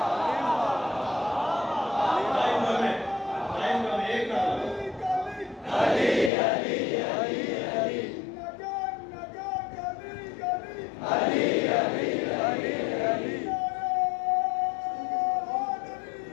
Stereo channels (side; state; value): right; drops out; at 6.3 s